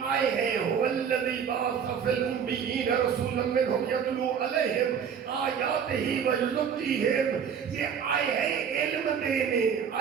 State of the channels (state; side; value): quieter; left; 7.4 dB